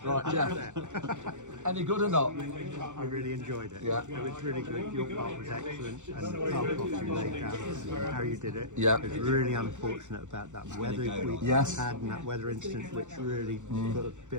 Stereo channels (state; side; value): late; left; 0.85 ms